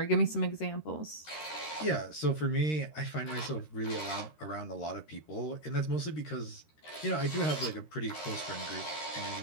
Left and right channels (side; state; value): right; late; 13 ms